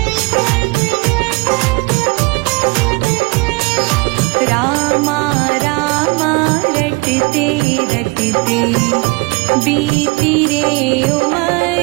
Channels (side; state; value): left; quieter; 26.8 dB